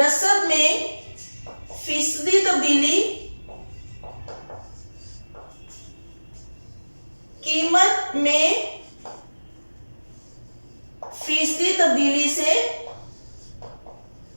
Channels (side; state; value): both; inverted; correlation -1.00